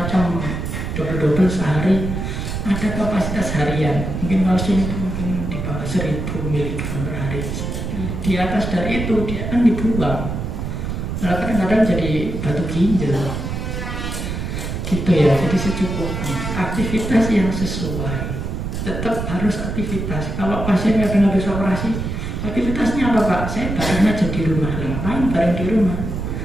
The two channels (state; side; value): noise; right; rumble, 4 dB below the sound